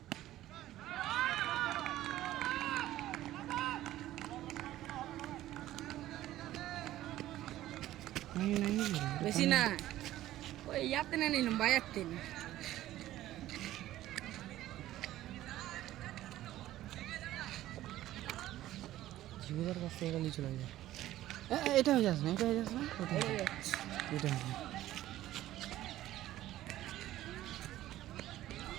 বেশি না ওই ইয়াতে না নিলাম বাইয়াতে না জীবনের কাছ থেকে নিয়ে চলে যায় এটা হয়ে যাস না এটা হয়ে যাস না ওটা এটা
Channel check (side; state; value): left; quieter; 14.4 dB